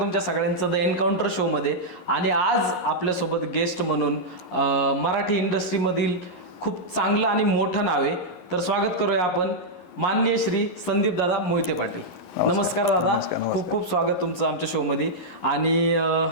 सगळ्यांचं द एन्काउंटर शोमध्ये. आणि आज आपल्यासोबत गेस्ट म्हणून मराठी इंडस्ट्रीमधील खूप चांगलं आणि मोठं नाव आहे, तर स्वागत करूया आपण माननीय श्री संदीप दादा मोहिते पाटील. नमस्कार दादा, खूप खूप स्वागत तुमचं आमच्या शोमध्ये. आणि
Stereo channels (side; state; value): right; late; 11 ms